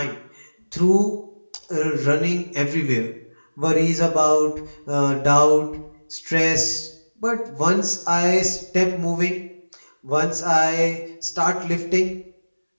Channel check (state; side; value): inverted; both; correlation -1.00